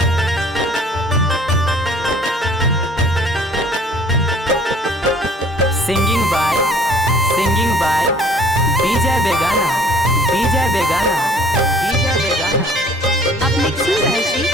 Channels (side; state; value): both; normal; correlation 0.54